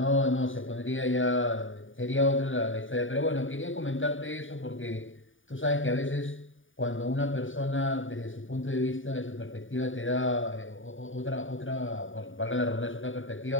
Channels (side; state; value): right; late; 0.57 ms